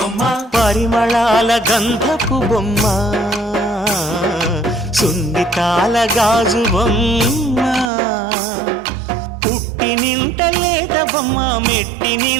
పరిమళాల గంధపు బొమ్మ సున్నితాల గాజు బొమ్మ పుట్టి నింట లేత బొమ్మ మెట్టి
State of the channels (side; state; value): left; drops out; at 7.9 s